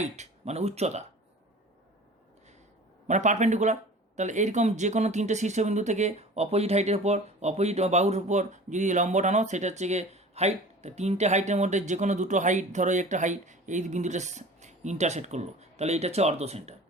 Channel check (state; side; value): normal; both; correlation 0.41